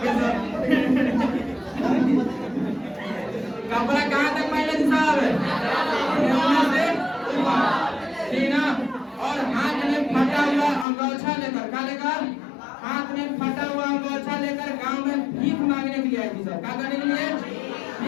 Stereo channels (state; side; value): drops out; right; at 10.9 s